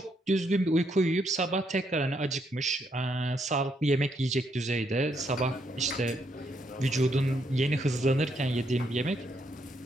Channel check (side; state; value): both; normal; correlation 0.75